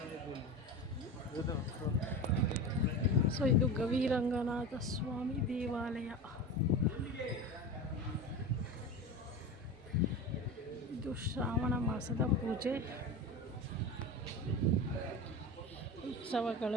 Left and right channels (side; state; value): both; normal; correlation 0.27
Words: ಸೊ ಇದು ಗವಿರಂಗನಾಥ ಸ್ವಾಮಿ ದೇವಾಲಯ. ಇದು ಶ್ರಾವಣ ಮಾಸದ ಪೂಜೆ